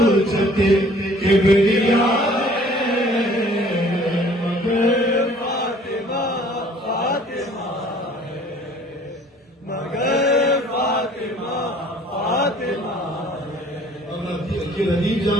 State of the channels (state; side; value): normal; both; correlation 0.54